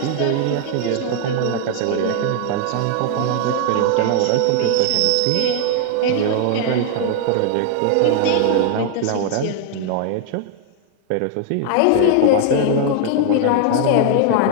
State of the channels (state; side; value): different; both; correlation 0.00